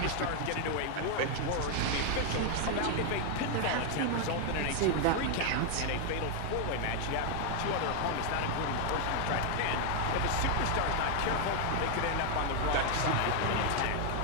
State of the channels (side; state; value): both; different; correlation 0.01